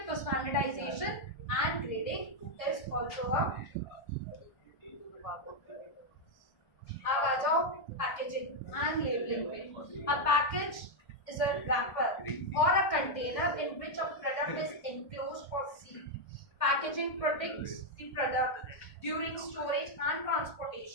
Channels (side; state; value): right; late; 1.6 ms